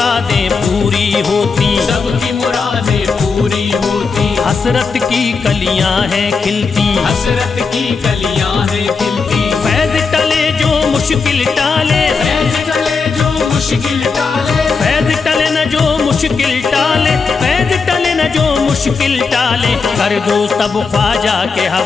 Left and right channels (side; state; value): right; quieter; 4.9 dB